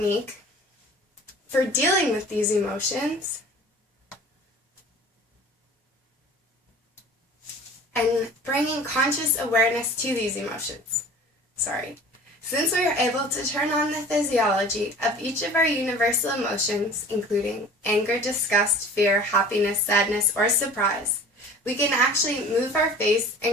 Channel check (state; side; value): normal; both; correlation 0.44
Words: for dealing with these emotions and bringing conscious awareness to these emotions. Since we are able to turn on the physiology of each of our universal emotions, including anger, disgust, fear, happiness, sadness, or surprise, we can actually move our face